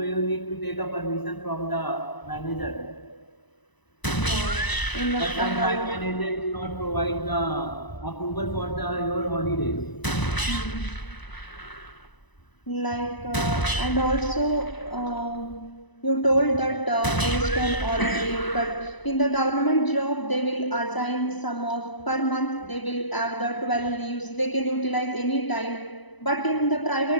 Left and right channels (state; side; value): late; right; 1.0 ms